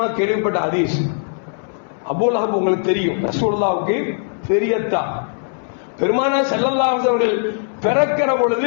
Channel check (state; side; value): silent; right; 66 dB below the other